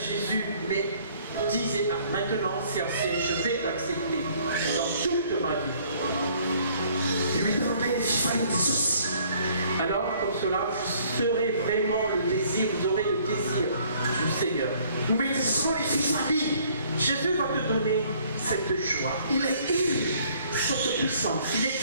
mais disez maintenant c'est assez, je vais l'accepter dans toute ma vie. Alors comme cela, vous serez vraiment le désir, vous aurez le désir du Seigneur. Jésus va te donner cette joie. Il est cette puissance. Il est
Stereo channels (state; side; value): inverted; both; correlation -0.60